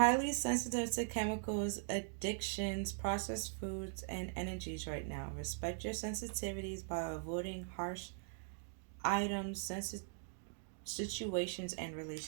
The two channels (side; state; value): left; silent; digital silence